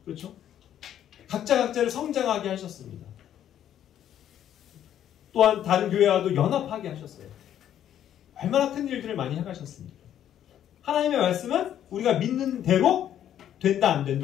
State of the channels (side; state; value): right; quieter; 10.6 dB